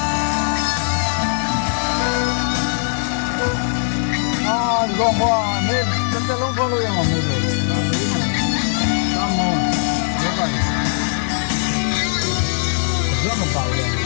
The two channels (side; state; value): right; silent; digital silence